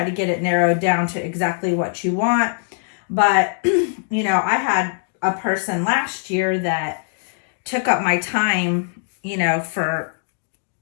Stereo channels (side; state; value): right; silent; digital silence